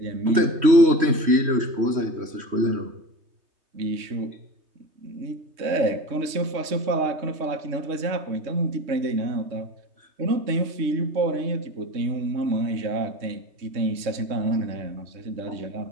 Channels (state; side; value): late; left; 3.2 ms